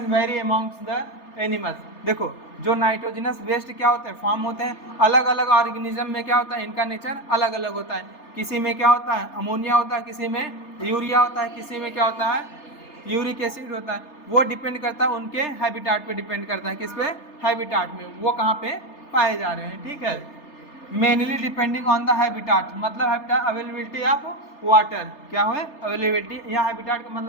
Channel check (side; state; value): right; late; 3.3 ms